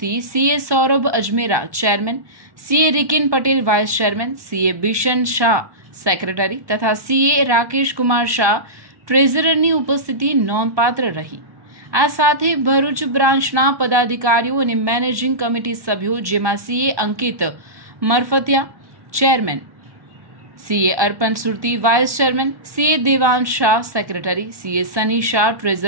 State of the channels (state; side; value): late; left; 1.2 ms